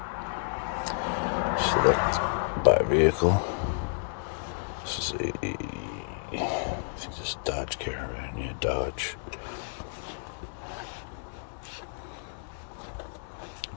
Select buy vehicle. This is I think this is Dodge Caravan. Yeah, Dodge.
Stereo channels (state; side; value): silent; right; digital silence